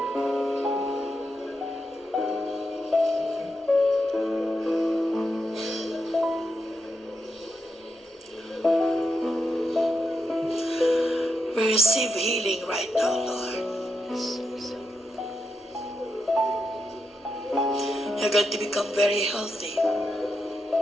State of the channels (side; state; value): both; normal; correlation 0.84